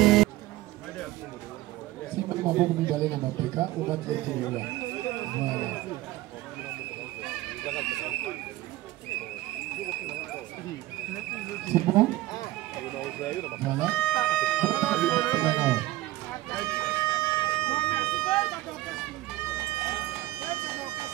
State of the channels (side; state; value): left; quieter; 17.4 dB